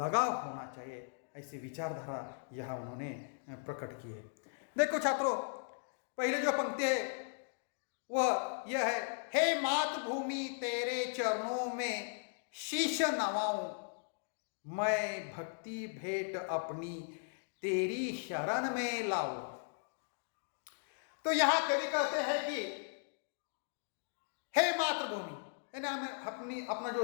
होना चाहिए। ऐसी विचारधारा यहाँ उन्होंने प्रकट की है। देखो छात्रों, पहले जो पंक्ति है वह यह है, हे मातृभूमि तेरे चरणों में शीश नवाऊं, मैं भक्ति भेंट अपनी तेरी शरण में लाऊं। तो यहां कवि कहते हैं कि हे मातृभूमि यानी हमें अपना जो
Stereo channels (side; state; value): right; silent; digital silence